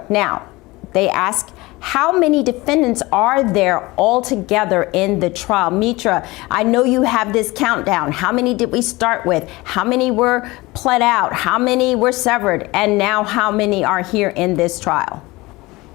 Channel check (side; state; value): right; quieter; 21.4 dB